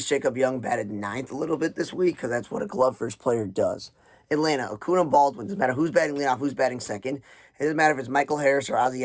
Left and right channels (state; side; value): identical; both; correlation 1.00